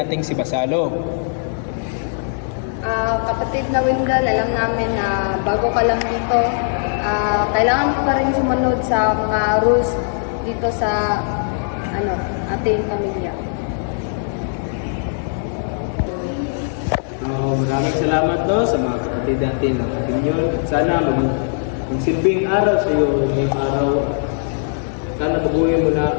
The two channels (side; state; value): right; silent; digital silence